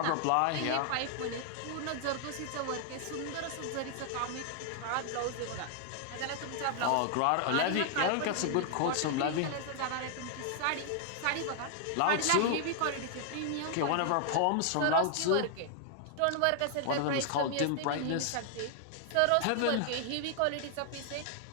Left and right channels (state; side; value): different; both; correlation 0.00